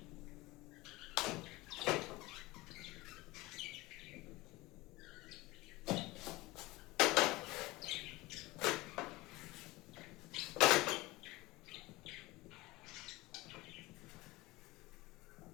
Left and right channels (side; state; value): right; quieter; 20.8 dB